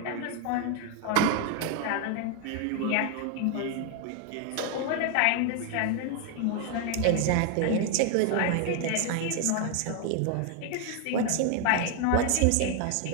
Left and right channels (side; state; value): both; different; correlation 0.01